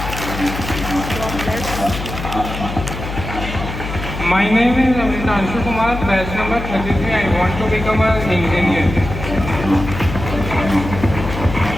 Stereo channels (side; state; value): left; noise; hum, 7 dB below the sound